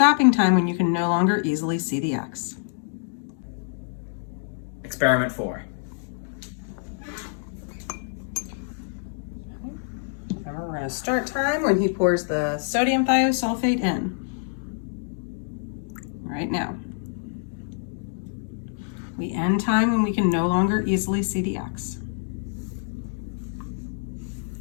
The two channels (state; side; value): silent; right; digital silence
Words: time when you can no longer easily see the X. Experiment 4. Remember, we're going to start time when he pours the sodium thiosulfate in. Right now. We end time when we can no longer easily see the X.